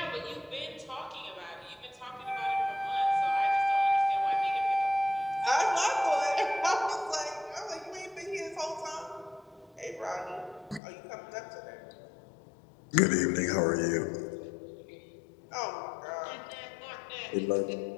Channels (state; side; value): drops out; right; at 10.8 s